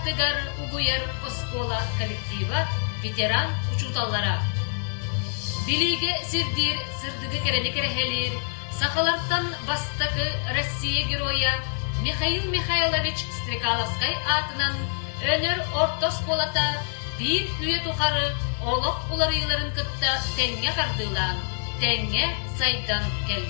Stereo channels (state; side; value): silent; right; digital silence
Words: угуяр оскола коллектива ветеран учуталлара. Билиге сирдир сырдыгы керени керехелир, сахаларттан бастакы Россия героя Михаил Михайлович Стрекаловскай атынан өнер орта осколата bir üye тухары олық уларыйларын кытта тәңге қардылан, тәңге сайдан